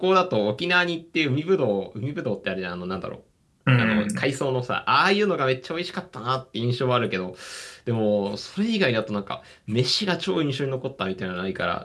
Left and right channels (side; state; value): both; identical; correlation 1.00